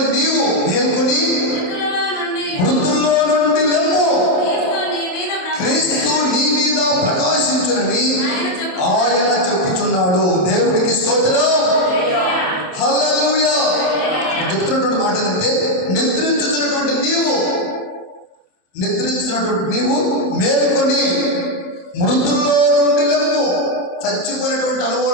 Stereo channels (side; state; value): right; late; 28 ms